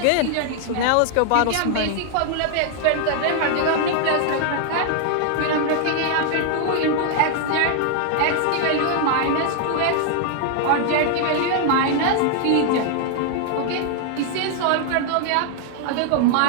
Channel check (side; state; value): both; different; correlation 0.00